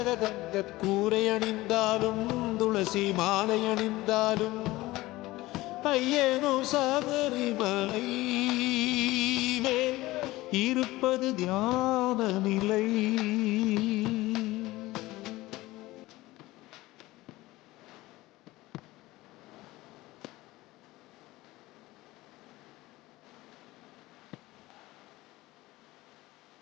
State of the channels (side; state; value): right; quieter; 18.7 dB